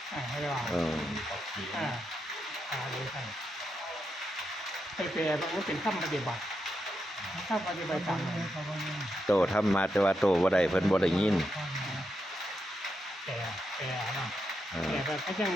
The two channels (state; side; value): normal; both; correlation 0.84